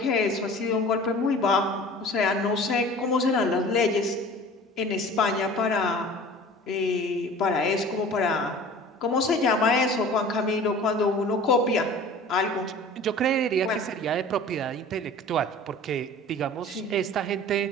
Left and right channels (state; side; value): normal; both; correlation 0.43